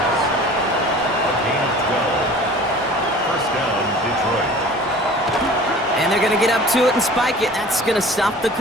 And And they're going to get up to it and spike it. That's going to stop the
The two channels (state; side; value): normal; both; correlation 0.44